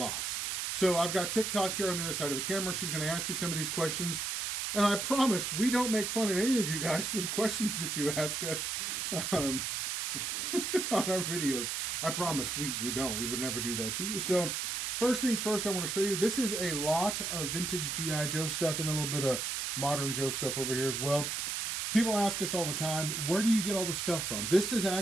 So I've got TikTok here on the other side of the camera. She's going to ask me some of these questions, and I promise we don't make fun of any of you guys for the questions that you ask us on our videos. I promise we don't. We would never do that to you. So first things first, I want to show you, this is a lot of vintage G.I. Joe stuff and a little bit of modern Joe stuff over here as well. People ask us all the time, where do you get all the stuff from? This is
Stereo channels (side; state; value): right; noise; hiss, 2 dB below the sound